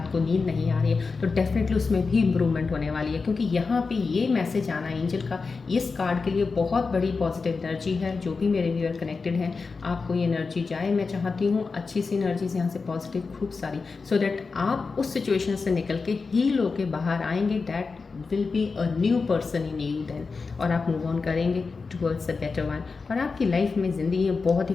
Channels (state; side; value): quieter; right; 4.5 dB